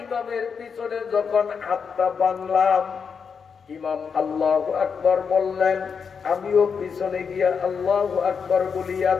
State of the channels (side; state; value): right; quieter; 6.1 dB